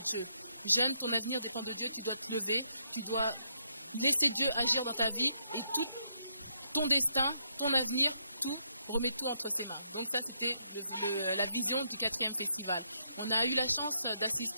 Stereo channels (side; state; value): both; inverted; correlation -0.75